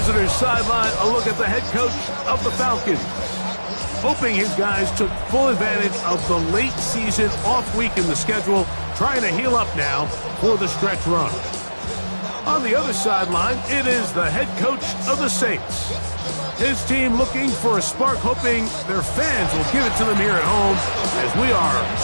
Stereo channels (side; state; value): both; inverted; correlation -1.00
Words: visitor's sideline, a look at the head coach of the Falcons. Hoping his guys took full advantage of the late season off week in the schedule, trying to heal up now for the stretch run. On the other sideline, it is the head coach of the Saints. His team looking for a spark, hoping their fans will give it to them here at home as we are